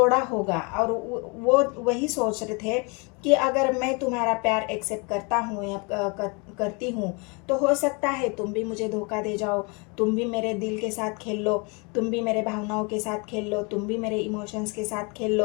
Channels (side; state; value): right; quieter; 31.4 dB